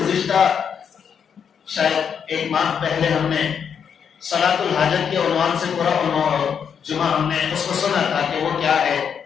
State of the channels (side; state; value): right; quieter; 7.3 dB